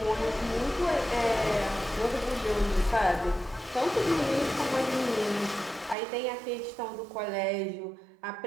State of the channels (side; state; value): left; drops out; at 6.0 s